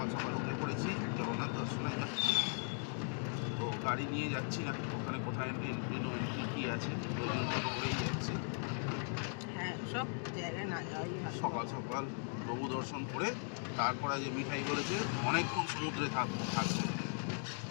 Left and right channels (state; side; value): silent; right; 52 dB below the other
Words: সকাল উঠে পড়েছি, জগন্নাথ দর্শনে যাচ্ছি। তো গাড়ি নিয়ে যাচ্ছি না, ওখানে কোথায় এন্ট্রি নো এন্ট্রি কী আছে, ওই জন্য টোটো করেই যাচ্ছি। হ্যাঁ, সব জায়গায় না যাওয়াই ভালো। সকাল সকাল প্রভু দর্শন করে তারপরে যে মিঠাই বলেছে অনেকক্ষণ সমুদ্রে থাকবে,